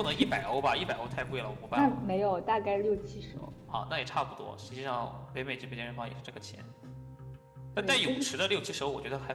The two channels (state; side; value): identical; both; correlation 1.00